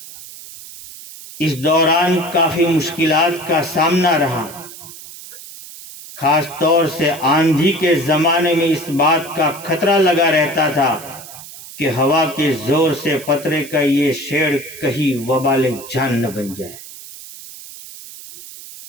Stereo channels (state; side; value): noise; right; hiss, 15 dB below the sound